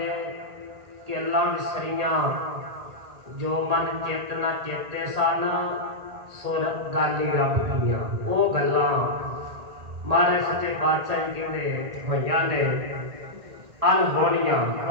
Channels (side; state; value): left; late; 1.8 ms